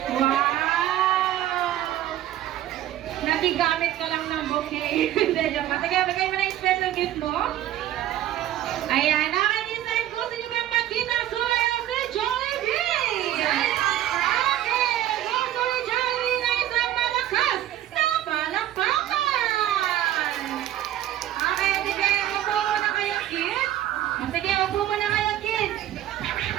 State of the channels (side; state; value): left; quieter; 12.8 dB